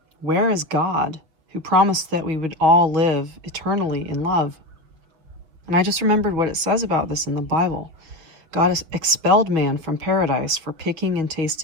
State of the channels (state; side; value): late; left; 6.4 ms